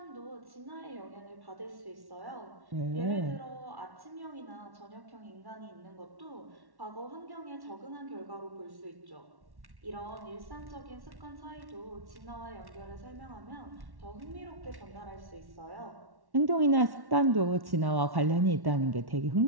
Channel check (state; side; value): late; left; 1.1 ms